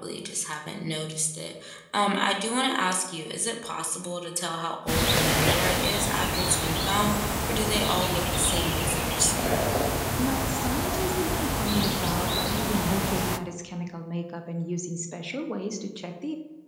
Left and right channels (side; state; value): both; identical; correlation 1.00